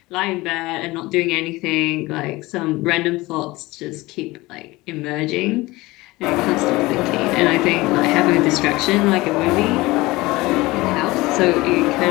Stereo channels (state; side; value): quieter; right; 20.7 dB